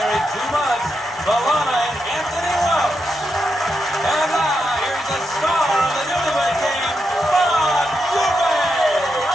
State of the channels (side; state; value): both; normal; correlation 0.84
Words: 2 months, Valana and Anthony Welch. And now, here's the star of the Newlywed Game, Bob Dubay.